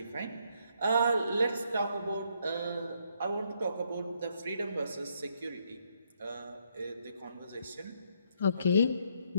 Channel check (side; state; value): both; inverted; correlation -0.73